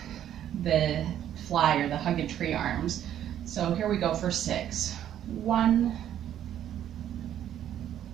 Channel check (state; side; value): quieter; left; 10.8 dB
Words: the fly or the hug a tree arms. So here we go for 6. 1,